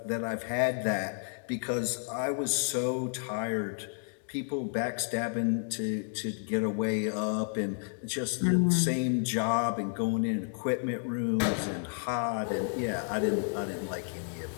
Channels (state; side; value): silent; right; 57 dB below the other